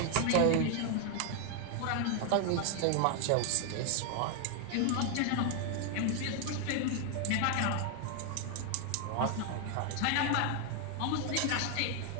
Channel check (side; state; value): both; different; correlation 0.00